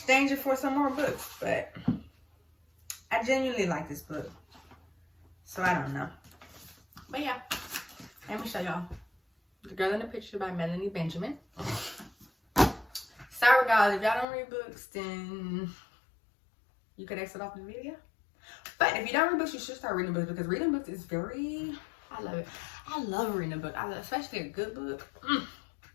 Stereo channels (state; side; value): drops out; right; at 14.2 s